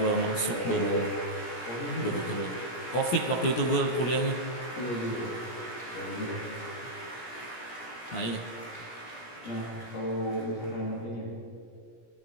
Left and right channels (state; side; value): late; right; 17 ms